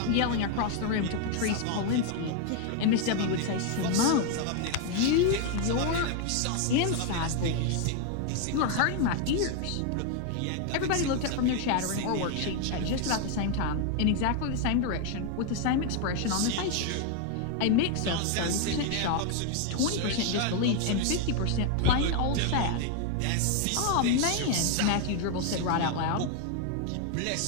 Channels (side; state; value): both; different; correlation 0.01